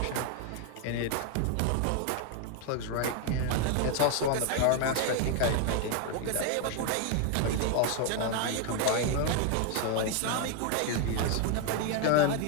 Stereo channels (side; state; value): both; different; correlation 0.01